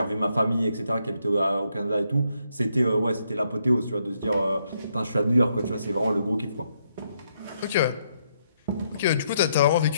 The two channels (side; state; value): both; inverted; correlation -0.76